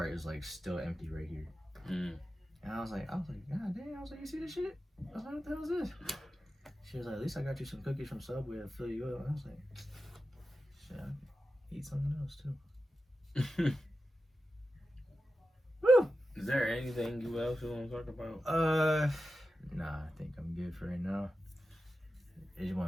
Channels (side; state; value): both; normal; correlation 0.91